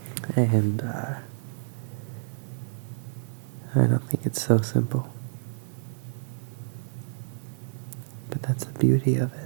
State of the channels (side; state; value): left; silent; digital silence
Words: And I don't think it's so simple. But that's the beauty of